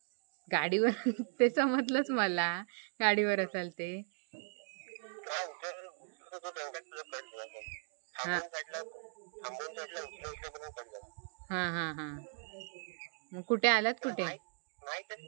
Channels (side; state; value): left; silent; 53 dB below the other